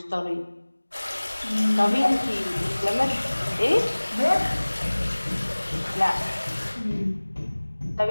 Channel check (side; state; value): both; inverted; correlation -1.00